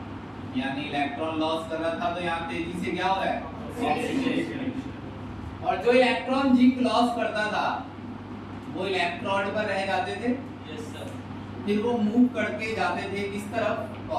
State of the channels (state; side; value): identical; both; correlation 1.00